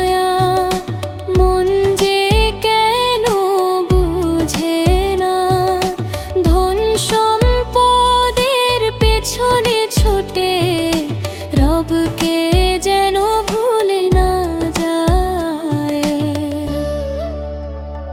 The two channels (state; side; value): identical; both; correlation 1.00